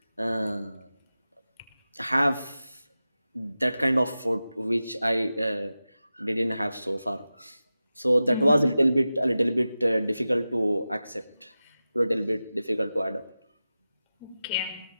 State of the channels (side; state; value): both; inverted; correlation -0.94